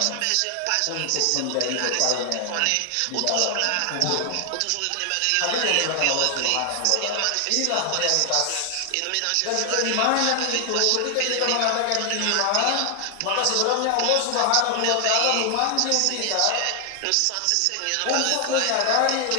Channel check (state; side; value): different; both; correlation 0.00